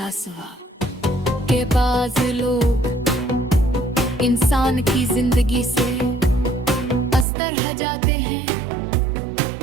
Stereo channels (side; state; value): left; drops out; at 7.2 s